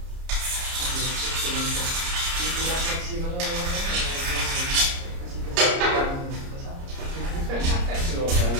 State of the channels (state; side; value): late; left; 30 ms